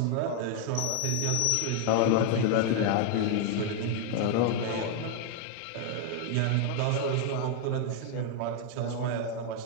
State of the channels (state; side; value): different; both; correlation 0.00